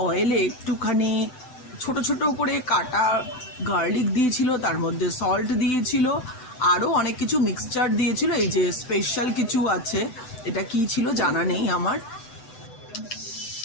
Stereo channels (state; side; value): late; right; 7.9 ms